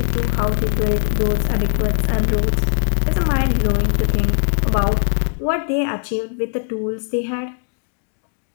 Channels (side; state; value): right; silent; digital silence